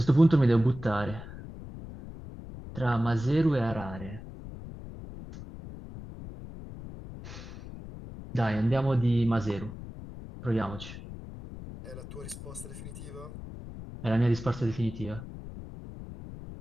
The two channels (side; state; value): left; noise; rumble, 12 dB below the sound